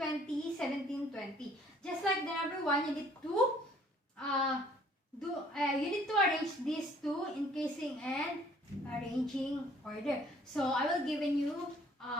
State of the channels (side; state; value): both; normal; correlation 0.58